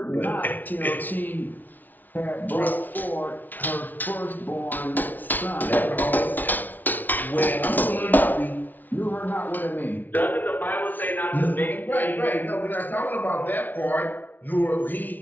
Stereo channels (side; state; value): right; late; 0.083 ms